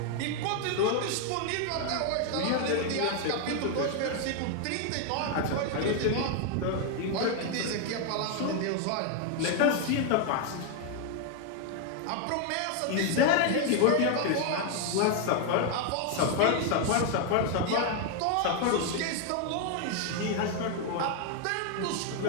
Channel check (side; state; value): both; different; correlation 0.00